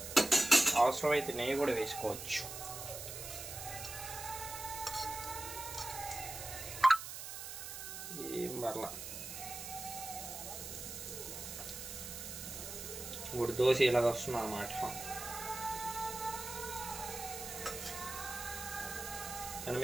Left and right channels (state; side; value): noise; right; hiss, 8 dB below the sound